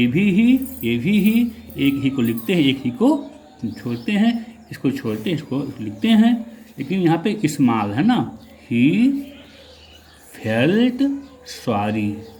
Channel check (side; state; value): both; identical; correlation 1.00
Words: भी ही, एक ही को लिखते हैं, एक ही को छोड़ते हैं, इसको छोड़ते हैं, इसको लिखते हैं, लेकिन यहाँ पे स्मॉल है ना। ही फेल्ट सॉरी,